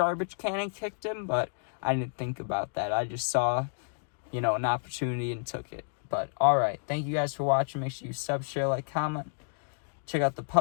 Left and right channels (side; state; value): right; silent; digital silence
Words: can and kicked him, but I didn't think about that. I just saw, an opportunity and took it. But, alright, thank you guys for watching. Make sure you sub, share, like, comment. Check out the